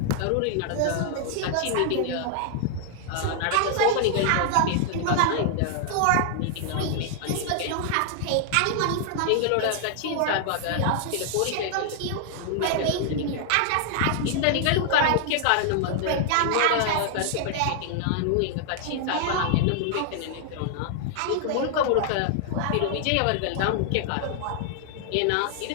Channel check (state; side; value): different; both; correlation 0.00